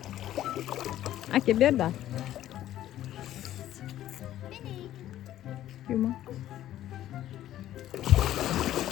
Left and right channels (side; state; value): right; quieter; 12.8 dB